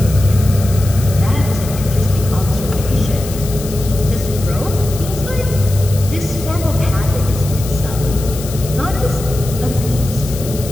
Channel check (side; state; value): left; noise; hiss, 13 dB below the sound